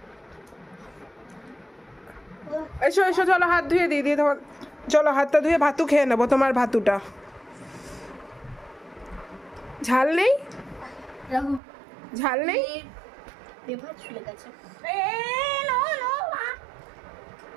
এসো এসো, চলো হাত ধুয়ে দিই দিয়ে তোমার, চলো হাতটা ধুয়ে ভাতু খেয়ে নেবো তোমার ভাতুটা। ঝাল নেই? ঝাল নেই?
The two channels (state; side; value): drops out; left; at 11.6 s